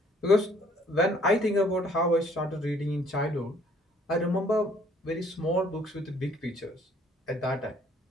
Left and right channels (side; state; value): both; normal; correlation 0.61